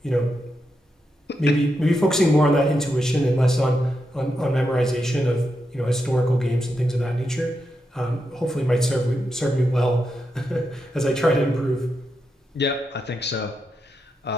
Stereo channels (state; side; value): normal; both; correlation 0.85